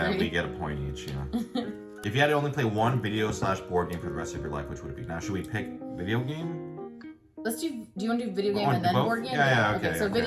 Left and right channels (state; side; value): identical; both; correlation 1.00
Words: we get a point each. Yeah. If you had to only play one video/board game for the rest of your life, which would it be? Now, should we pick video game? Let's do. Do you want to do video game Oh, and then both? board game? Yeah, okay, So okay.